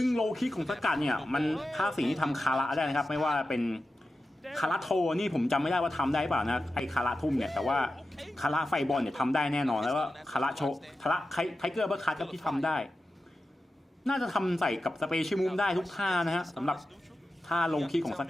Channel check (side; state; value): both; normal; correlation 0.92